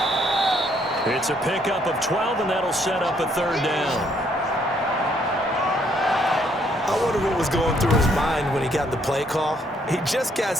It's a pickup of 12, and that'll set up a 3rd down. I wonder what was going through his mind when he got the play call. He just got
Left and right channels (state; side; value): normal; both; correlation 0.69